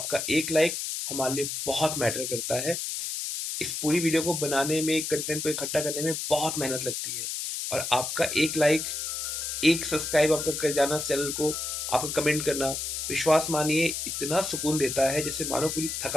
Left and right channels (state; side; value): noise; left; hiss, 3 dB below the sound